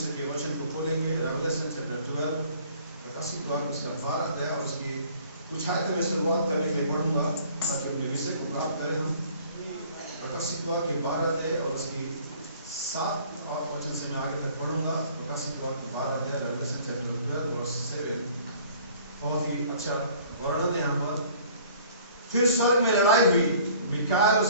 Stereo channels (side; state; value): both; inverted; correlation -0.54